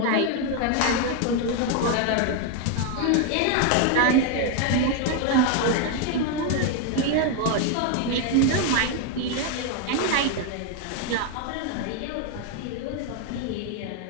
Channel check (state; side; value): different; both; correlation 0.01